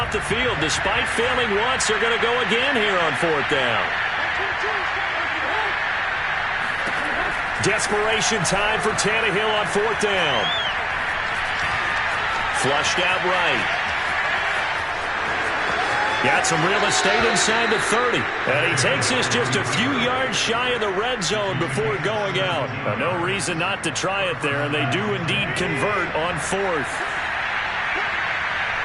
the field. Despite failing once, they're going to go again here on fourth down. Desperation time for Tannehill on fourth down. Flushed out right. Got some real estate inside the 30. And he takes this just a few yards shy of the red zone before going out. No reason not to try it there, and they do indeed convert on fourth.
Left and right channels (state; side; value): identical; both; correlation 1.00